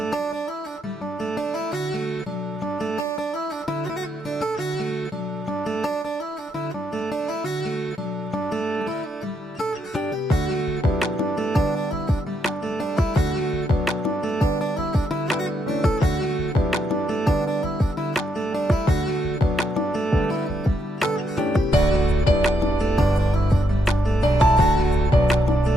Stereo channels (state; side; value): normal; both; correlation 0.78